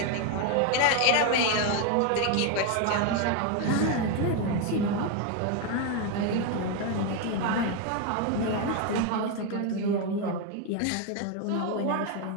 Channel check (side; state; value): both; different; correlation 0.02